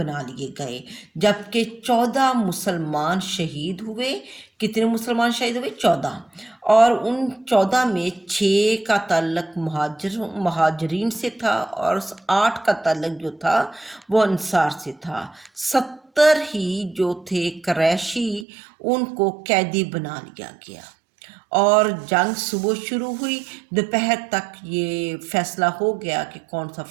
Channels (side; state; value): left; drops out; at 18.4 s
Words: لیے گئے، جبکہ 14 مسلمان شہید ہوئے۔ کتنے مسلمان شہید ہوئے؟ 14، اور ان 14 میں 6 کا تعلق مہاجرین سے تھا، اور 8 کا تعلق جو تھا وہ انصار سے تھا۔ 70 ہی جو تھے قریشی، ان کو قیدی بنا لیا گیا، اور جنگ صبح شروع ہوئی، دوپہر تک یہ فیصلہ ہو گیا کہ کون سا